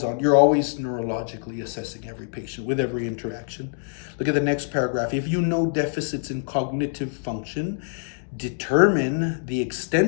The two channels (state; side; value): silent; right; digital silence